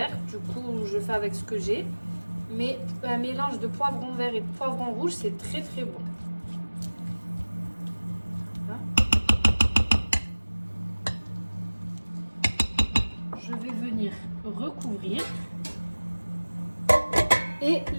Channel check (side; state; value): both; inverted; correlation -1.00